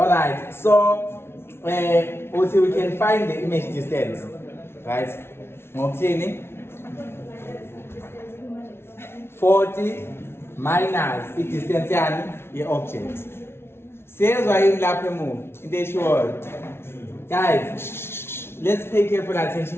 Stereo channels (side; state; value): right; late; 0.12 ms